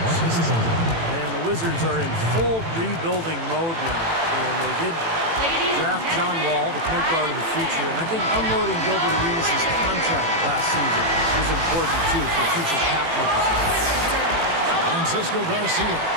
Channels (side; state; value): left; late; 18 ms